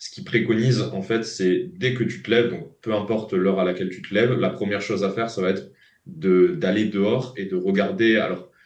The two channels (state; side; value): identical; both; correlation 1.00